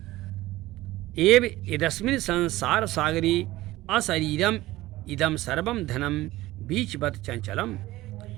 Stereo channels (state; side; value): quieter; left; 17.3 dB